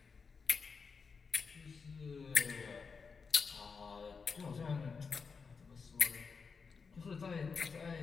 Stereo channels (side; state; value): right; quieter; 5.2 dB